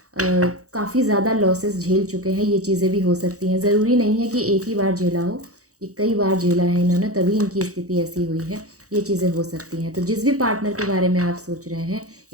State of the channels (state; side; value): late; left; 0.66 ms